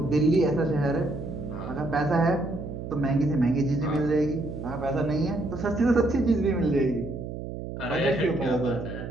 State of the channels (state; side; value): noise; right; hum, 8 dB below the sound